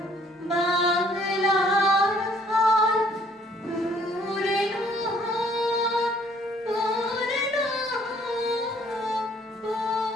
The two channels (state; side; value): normal; both; correlation 0.61